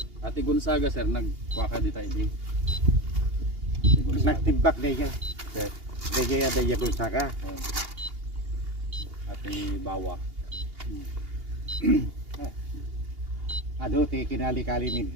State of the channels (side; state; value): left; late; 2.8 ms